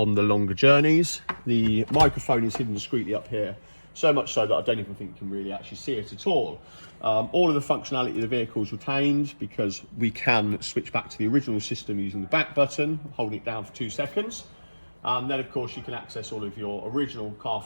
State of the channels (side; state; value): both; inverted; correlation -1.00